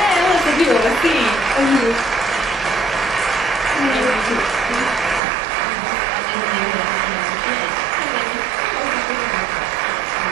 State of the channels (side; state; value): left; drops out; at 5.2 s